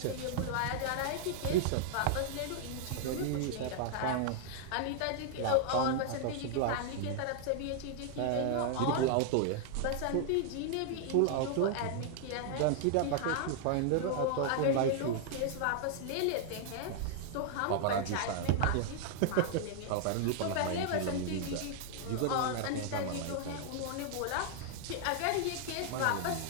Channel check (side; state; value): both; different; correlation -0.01